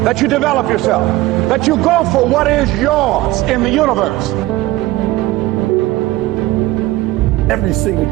that you develop yourself, that you go for what is yours in the universe. Every single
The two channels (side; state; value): left; quieter; 17.6 dB